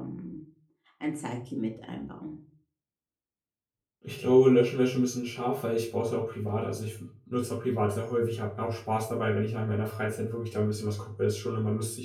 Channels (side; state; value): both; identical; correlation 1.00